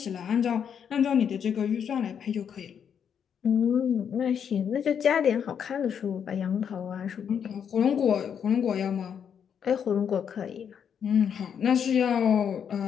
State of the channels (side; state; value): right; quieter; 7.9 dB